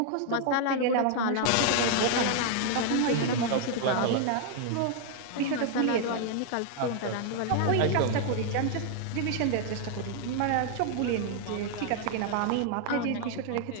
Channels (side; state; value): both; different; correlation 0.00